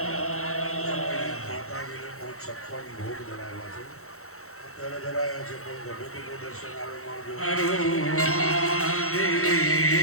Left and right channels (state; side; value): late; right; 0.64 ms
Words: ભોગ ધરાવ્યા છે, અત્યારે ધરાયા છે, પણ ગમે તેનું દર્શન આવે મળજો.